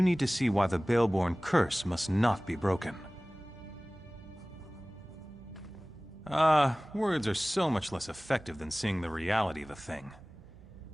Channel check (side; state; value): right; noise; hum, 24 dB below the sound